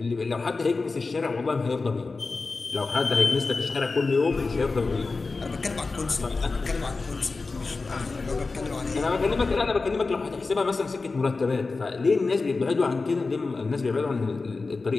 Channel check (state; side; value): quieter; right; 3.9 dB